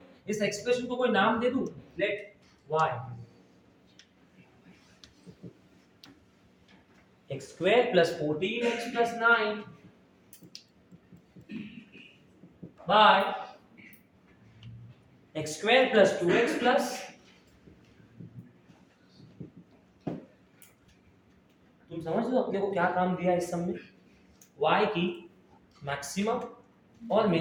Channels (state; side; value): identical; both; correlation 1.00